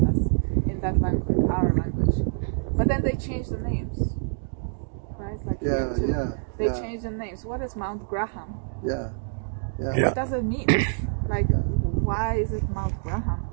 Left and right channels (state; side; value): silent; left; digital silence